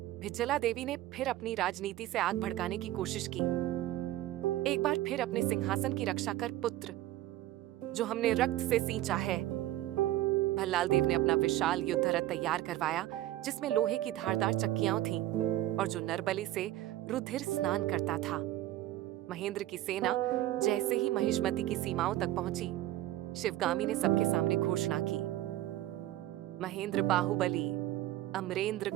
भिज्जला देवी ने फिर अपनी राजनीति से आग भड़काने की कोशिश की। एक बार फिर अपने सिंहासन की रक्षा कर पुत्र, जो हमने रक्त से सींचा है। भल्लाल देव ने अपना विशाल युद्ध रथ तैयार करवाया, जिसमें लोहे की धारदार चक्कियां थीं और जो नरबली से रुधिर स्नान करता था। महेंद्र की सेना जैसे ही महिष्मती की सीमाओं तक पहुंची, शिवगामी ने सबके सामने घोषणा की, महेंद्र बाहुबली, अमरेंद्र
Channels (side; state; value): left; quieter; 14.7 dB